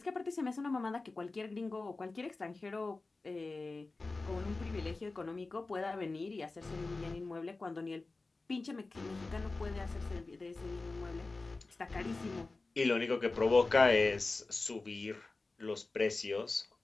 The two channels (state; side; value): quieter; right; 3.5 dB